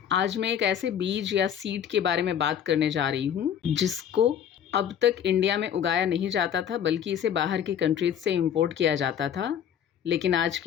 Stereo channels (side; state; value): right; quieter; 9.1 dB